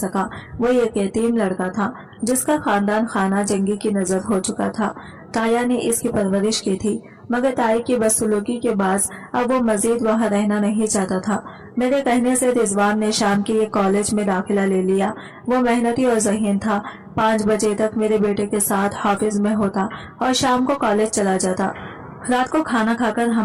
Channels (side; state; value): both; identical; correlation 1.00